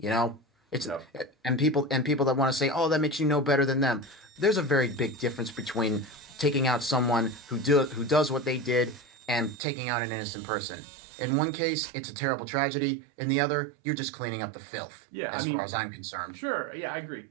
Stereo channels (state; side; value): drops out; left; at 9.6 s